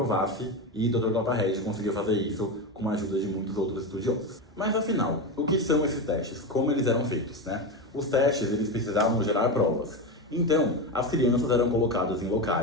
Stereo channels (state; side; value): normal; both; correlation 0.17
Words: e Dr. Clapahead conseguiu fazer isso com a ajuda de muitos outros estudiosos. Mas afinal, o que são esses testes? Como eles eram feitos, né? Os testes, eles precisavam gerar provas. Então, as crianças eram colocadas em